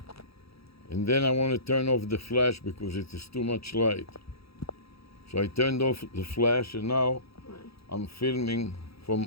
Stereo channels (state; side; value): late; right; 0.77 ms